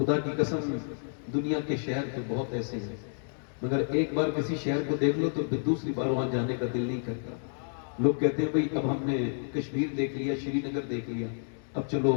کی قسم دنیا کے شہر تو بہت ایسے ہیں، مگر ایک بار کسی شہر کو دیکھ لو تو پھر دوسری بار وہاں جانے کا دل نہیں کرتا۔ لوگ کہتے ہیں بھئی اب ہم نے کشمیر دیکھ لیا، شری نگر دیکھ لیا، اب چلو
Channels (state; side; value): silent; right; digital silence